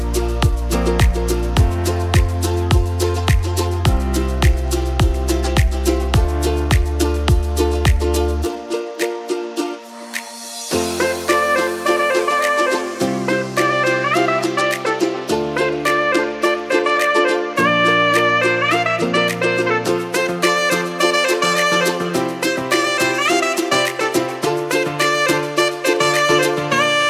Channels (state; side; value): identical; both; correlation 1.00